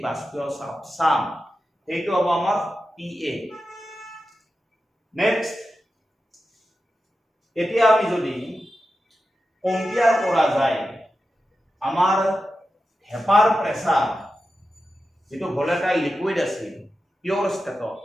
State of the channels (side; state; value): both; normal; correlation 0.91